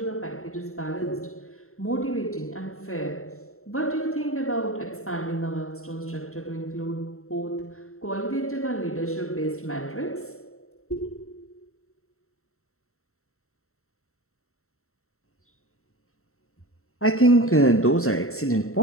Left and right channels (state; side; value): late; right; 0.63 ms